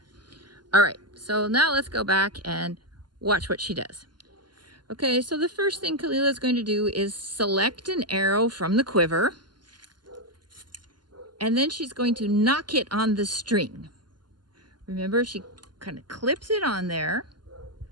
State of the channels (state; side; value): late; left; 0.71 ms